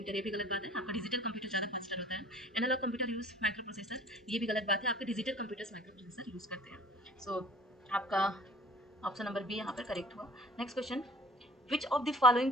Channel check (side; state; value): both; normal; correlation 0.49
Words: ये भी गलत बात है, आपका डिजिटल कंप्यूटर ज़्यादा फास्टर होता है। Analog computer use microprocessor, ये भी गलत बात है, आपके digital computers microprocessor use करते हैं। सो आपका ऑप्शन नंबर बी यहाँ पर करेक्ट हुआ। Next question, which of the following